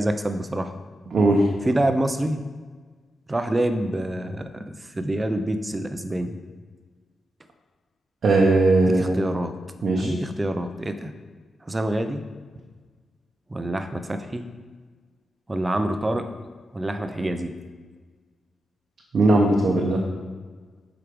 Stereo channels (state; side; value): normal; both; correlation 0.88